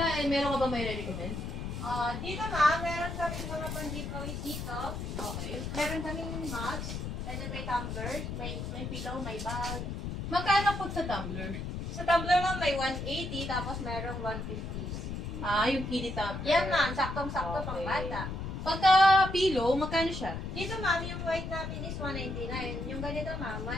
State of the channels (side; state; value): left; noise; rumble, 5 dB below the sound